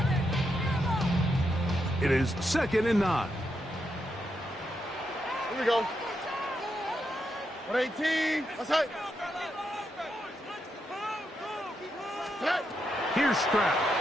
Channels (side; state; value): both; normal; correlation 0.83